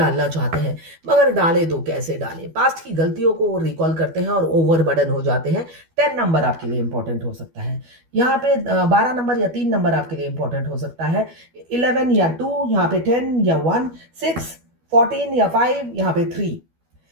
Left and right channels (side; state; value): left; late; 12 ms